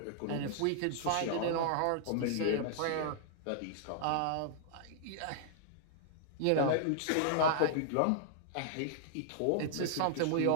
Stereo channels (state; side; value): different; both; correlation -0.01